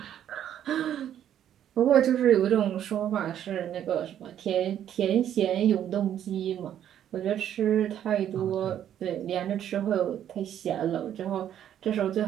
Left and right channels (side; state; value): left; quieter; 10.4 dB